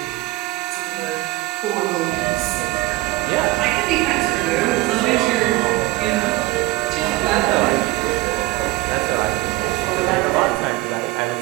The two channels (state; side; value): quieter; left; 19.2 dB